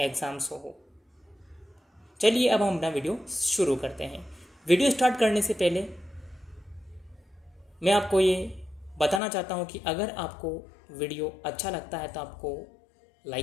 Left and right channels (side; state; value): right; drops out; at 9.2 s